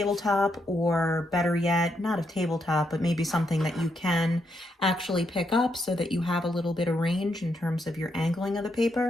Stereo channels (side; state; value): both; normal; correlation 0.79